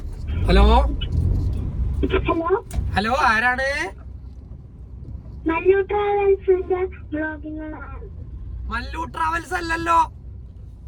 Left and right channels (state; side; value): identical; both; correlation 1.00